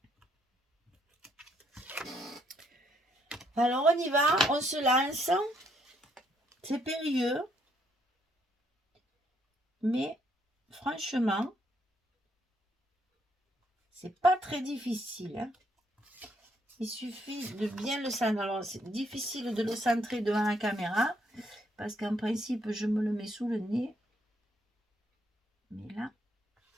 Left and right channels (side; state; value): both; normal; correlation 0.72